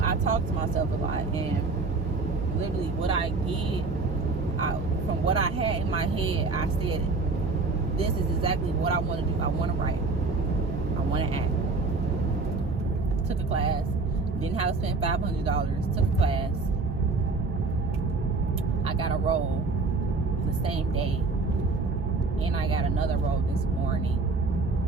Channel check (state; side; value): quieter; left; 3.8 dB